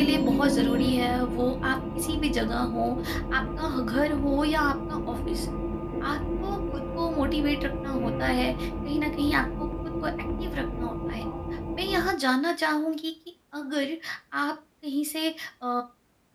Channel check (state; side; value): identical; both; correlation 1.00